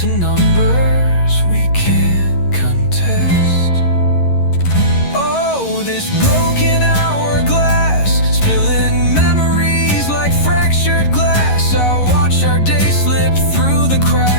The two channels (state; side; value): late; right; 11 ms